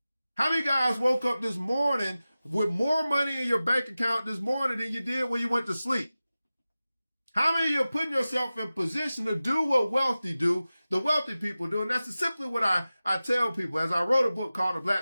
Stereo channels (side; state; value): both; inverted; correlation -0.96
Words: How many guys woke up this morning with more money in your bank account this morning than you did when you went to sleep? How many of you are putting yourself in position to do what the wealthy people do? And that's simply what I tell people as I wrote a book called The